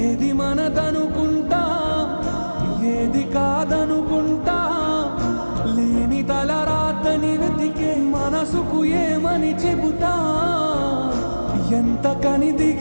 మనదనుకుంటా ఏది కాదనుకుంటా లేని తలరాతని వెతికే మనసుకు ఏమని చెబుతా ఎంత కని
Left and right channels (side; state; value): both; inverted; correlation -1.00